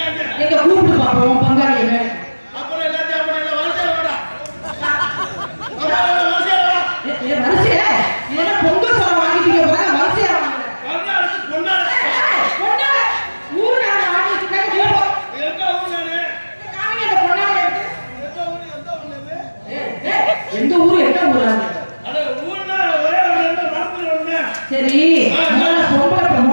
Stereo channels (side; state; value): both; inverted; correlation -1.00